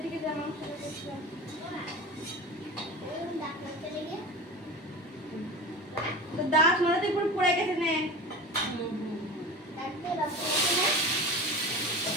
দিকে যেমন সেটা দেখছিলাম দাঁত মাথাতে পুরো পড়ে গেছে নে।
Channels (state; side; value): normal; both; correlation 0.32